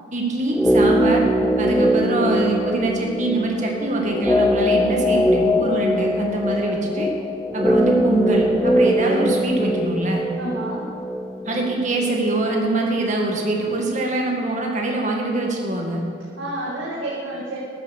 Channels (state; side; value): normal; both; correlation 0.67